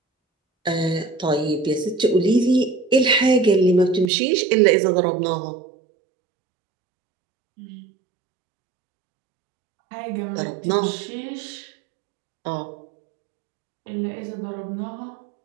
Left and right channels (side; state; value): left; drops out; at 4.1 s